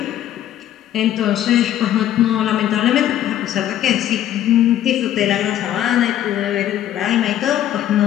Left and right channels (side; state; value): right; quieter; 11.7 dB